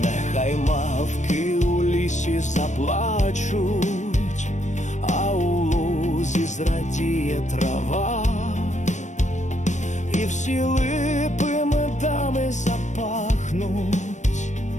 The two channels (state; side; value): late; right; 0.35 ms